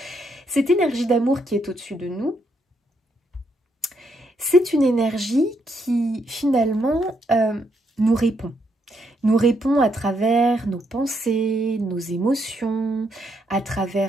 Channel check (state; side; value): normal; both; correlation 0.76